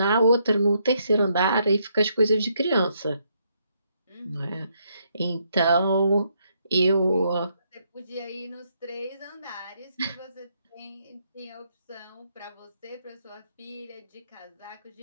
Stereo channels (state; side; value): inverted; both; correlation -0.75